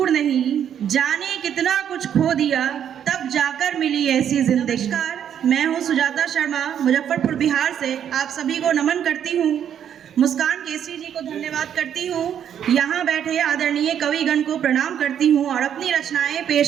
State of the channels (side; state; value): left; quieter; 9.2 dB